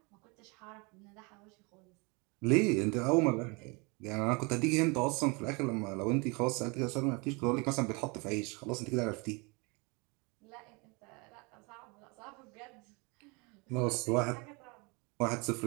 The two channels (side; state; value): left; quieter; 29.4 dB